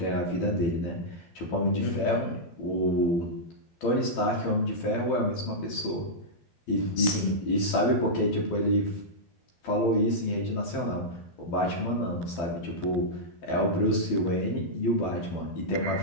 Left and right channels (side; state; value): right; late; 12 ms